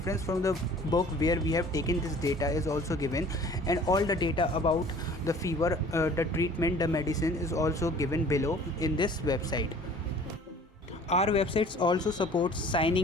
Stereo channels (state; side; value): normal; both; correlation 0.49